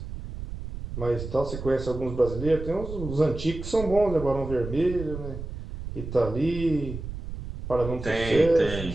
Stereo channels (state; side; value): noise; right; rumble, 9 dB below the sound